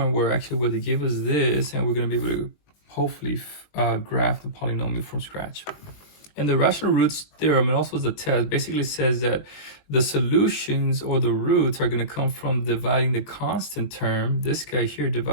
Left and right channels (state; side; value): late; right; 20 ms